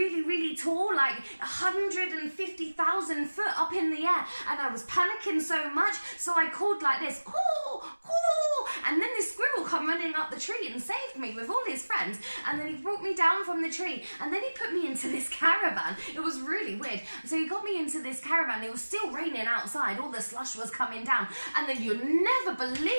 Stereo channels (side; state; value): both; inverted; correlation -1.00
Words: really tall, like 150,000 foot up in the air. And I was panicking so much, so I called like this, call, call. And then this squirrel come running up the tree and saved me with all his friends. And then he brought me down from the tree. And then he put me into this caravan. It was really weird. So he got me into this caravan. It was still raining outside. All the slush was coming down. And then you'll never